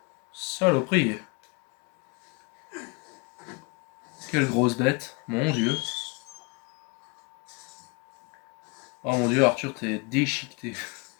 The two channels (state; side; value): quieter; right; 28.8 dB